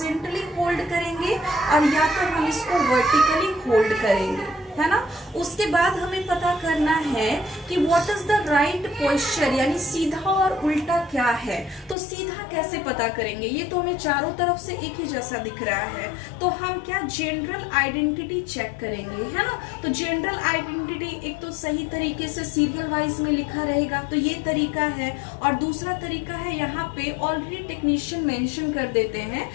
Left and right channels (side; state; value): right; drops out; at 12.0 s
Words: होल्ड करेंगे और या तो हम इसको वर्टिकली होल्ड करेंगे, है ना। उसके बाद हमें पता करना है कि what is the right posture, यानी सीधा और उल्टा क्या है। तो सीधा कैसे पता करेंगे? ये तो हमें चारों तरफ से एक ही जैसा दिख रहा है, तो हम क्या जनरल आइडेंटिटी चेक करेंगे, है ना। तो जनरल आइडेंटिटी एक तो सही तरीके से सीरियल वाइज में लिखा रहेगा, तो ये तरीका है। और दूसरा तरीका है, यहाँ पे ऑलरेडी टेक्नीशियन मेंशन कर देते हैं